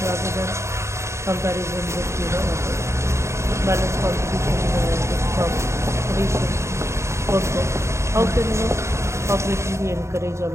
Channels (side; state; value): left; late; 0.14 ms